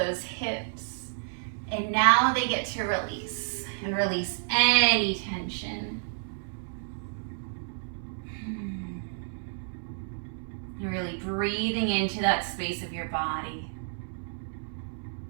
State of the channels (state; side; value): silent; left; digital silence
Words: hips, and now they get to release, and release any tension. You're really breathing into that space of your body.